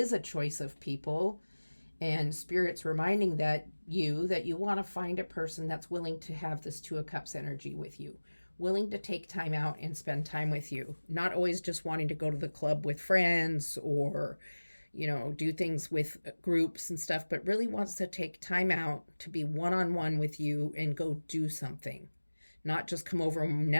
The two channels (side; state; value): both; inverted; correlation -1.00